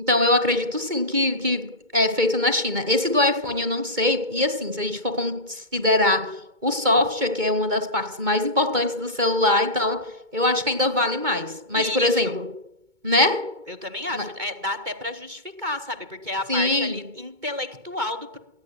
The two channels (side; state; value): left; late; 2.2 ms